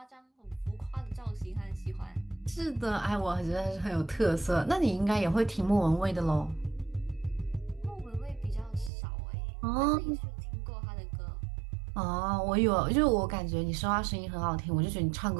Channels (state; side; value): drops out; left; at 8.9 s